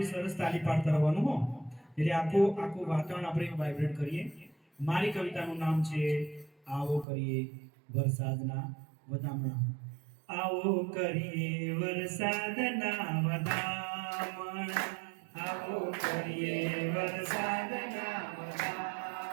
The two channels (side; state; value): left; drops out; at 7.1 s